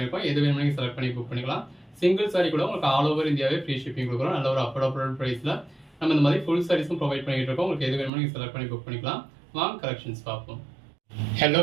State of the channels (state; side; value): drops out; left; at 8.1 s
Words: எது வேணுமோ நீங்கள் செலக்ட் பண்ணி புக் பண்ணிக்கலாம். சிங்கிள் சாரி கூட உங்களுக்கு ஆல் ஓவர் இந்தியாவே ஃப்ரீ ஷிப்பிங் கொடுக்குறோம். நல்ல ஒரு அஃபோர்டபுள் ப்ரைஸில் நம்ம இந்த மாதிரி ஃபுல் சாரீஸும் ப்ரொவைட் பண்ணிட்டு இருக்கோம். உங்களுக்கு எது வேணுமோ நீங்கள் செலக்ட் பண்ணி புக் பண்ணிக்கலாம். வாங்க கலெக்ஷன்ஸ் பார்ப்போம். ஹலோ